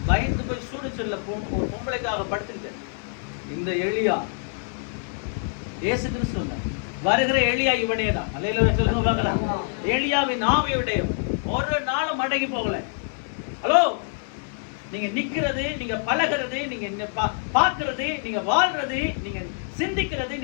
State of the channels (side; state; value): right; silent; digital silence